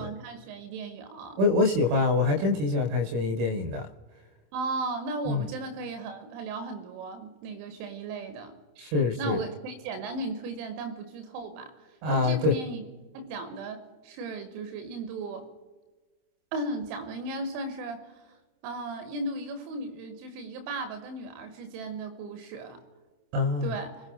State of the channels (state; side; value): late; left; 27 ms